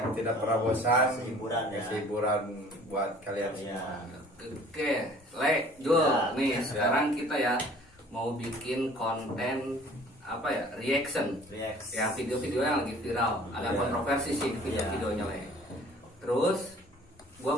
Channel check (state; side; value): normal; both; correlation 0.51